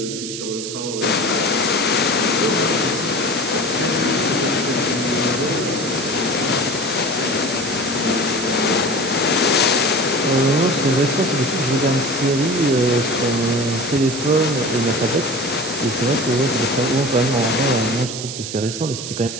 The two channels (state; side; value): noise; right; hiss, 7 dB below the sound